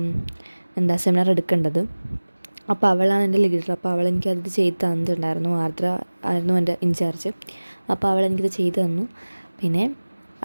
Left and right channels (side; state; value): both; inverted; correlation -1.00